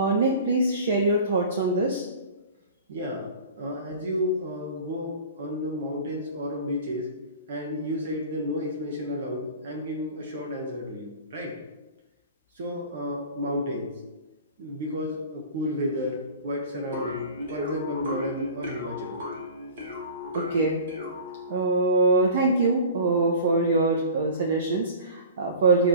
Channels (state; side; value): inverted; both; correlation -0.40